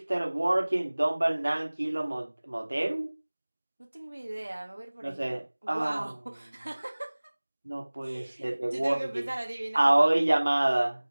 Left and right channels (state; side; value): inverted; both; correlation -1.00